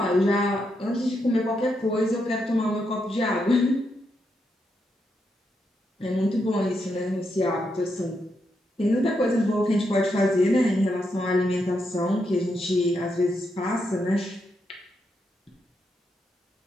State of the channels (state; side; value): normal; both; correlation 0.82